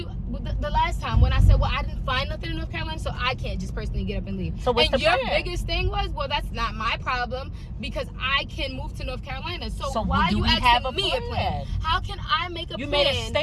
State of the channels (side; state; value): both; identical; correlation 1.00